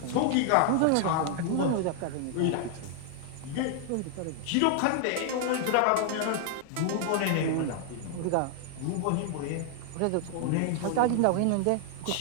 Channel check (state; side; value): different; both; correlation 0.00